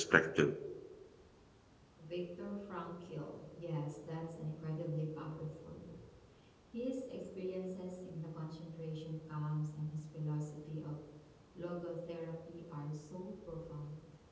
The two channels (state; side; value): identical; both; correlation 1.00